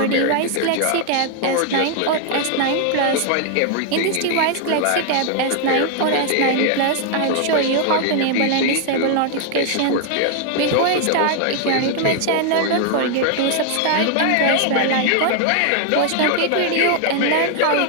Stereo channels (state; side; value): different; both; correlation 0.00